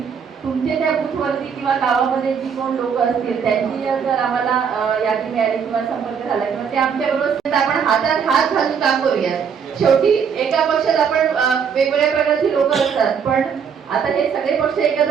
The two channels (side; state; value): left; quieter; 6.9 dB